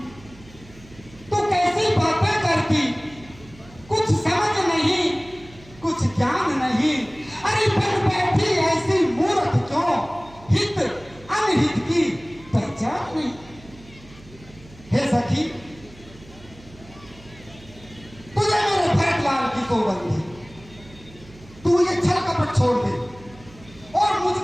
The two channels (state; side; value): noise; right; hum, 22 dB below the sound